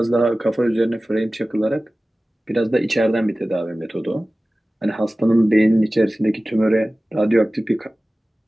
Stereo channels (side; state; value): both; normal; correlation 0.97